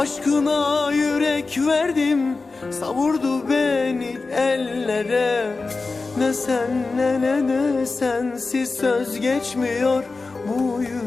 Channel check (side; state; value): right; quieter; 3.9 dB